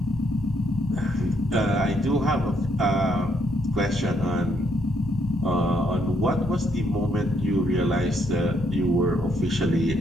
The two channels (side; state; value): both; normal; correlation 0.73